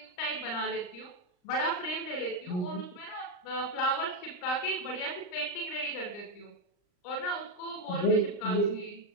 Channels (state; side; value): late; right; 39 ms